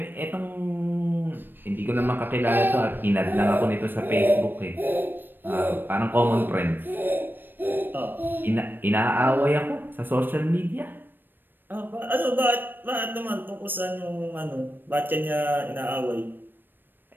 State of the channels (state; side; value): late; left; 0.094 ms